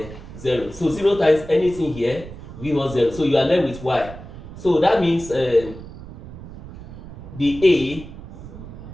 0. So 0 times anything here give us 0. So you are left with y. So that means the A,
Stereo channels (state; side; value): noise; right; rumble, 14 dB below the sound